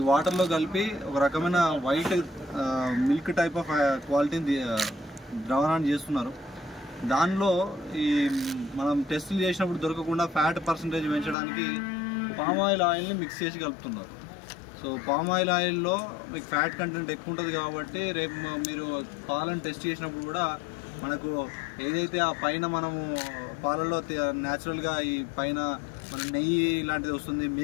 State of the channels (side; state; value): right; drops out; at 11.4 s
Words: వాటర్లో కలిపి ఒక రకమైన వైట్ మిల్క్ టైప్ ఆఫ్ క్వాలిటీని ద్రావణాన్ని చేస్తున్నారు. దానిలో ఈ మనం టెస్టులు చేసినప్పుడు దొరకకుండా ఫ్యాట్ పర్సంటేజ్ పెంచడానికి పామ్ ఆయిల్ని మిక్స్ చేసి కలుపుతున్నారు. సో పామ్ ఆయిల్లో మీకు ఫ్యాట్ కంటెంట్ ఎక్కువ ఉంటుంది కాబట్టి రేపు మీరు పాలను టెస్ట్ చేసినప్పుడు కూడా మనకు ఏదైతే ఆ పైన మనము పాలలో న్యాచురల్గా ఈ పైన మన నెయ్యి ఇలాంటిది వస్తుంది,